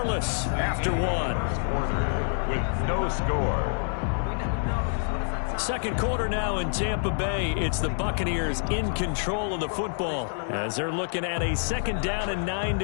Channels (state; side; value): silent; right; 60 dB below the other